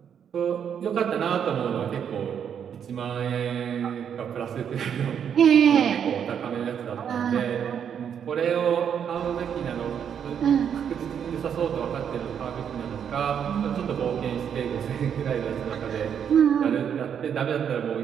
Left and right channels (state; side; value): quieter; left; 8.2 dB